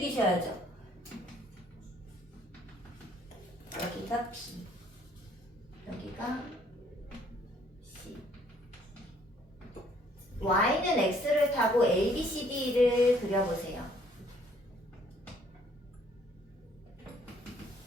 여기가 B 여기가 C Y는 X를 타고 A, B, C, D를 그려보세요.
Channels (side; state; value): both; normal; correlation 0.63